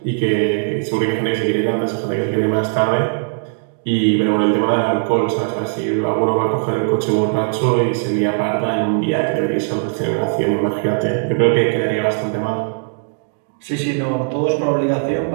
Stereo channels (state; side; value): silent; left; digital silence